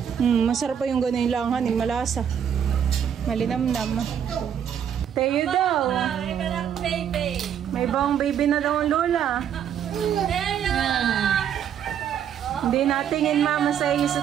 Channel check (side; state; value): left; quieter; 8.8 dB